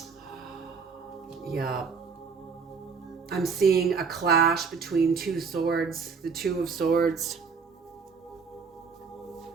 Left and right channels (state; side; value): quieter; left; 5.5 dB